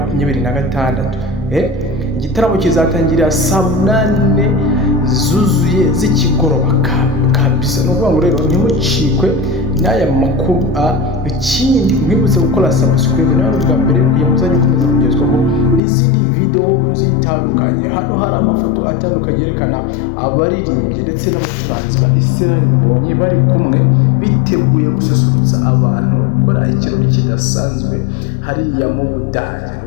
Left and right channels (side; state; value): right; drops out; at 15.8 s